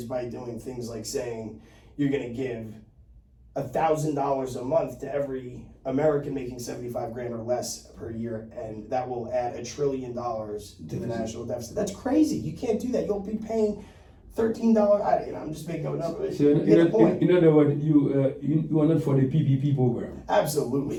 by doing things like saying you're going to give $1,000 a month to every American making 75 grand or less per year, and that will add $1 trillion to the national deficit. That's crazy. You can't do that. You'll be paying $13. I'm just making up a number. So in other words, you are not for the PPP program.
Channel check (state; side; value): identical; both; correlation 1.00